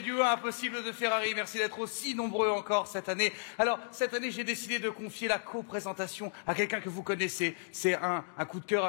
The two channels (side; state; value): right; silent; digital silence